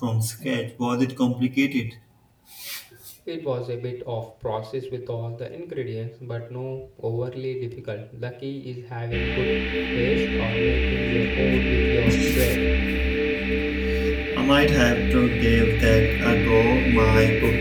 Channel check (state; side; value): identical; both; correlation 1.00